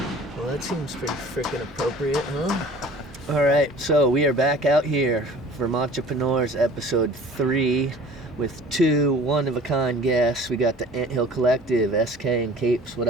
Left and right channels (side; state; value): both; normal; correlation 0.46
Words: Well, that seems pretty freaking appropriate, huh? All right, so we are back out here, Vermontrepreneurs episode 3, with 2 one-of-a-kind guests. We got the Anthill Collective, Eskae and Capes. What